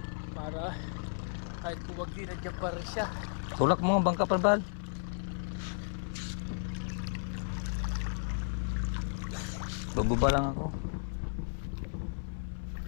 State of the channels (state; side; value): silent; right; 55 dB below the other